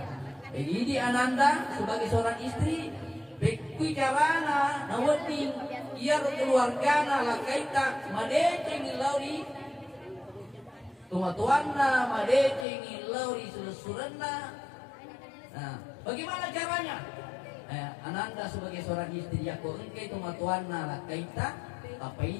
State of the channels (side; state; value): right; drops out; at 12.7 s